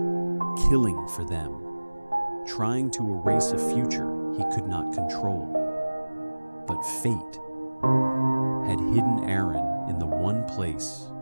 killing for them, trying to erase a future he could not control. But fate had hidden Aderin in the one place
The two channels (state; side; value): inverted; both; correlation -1.00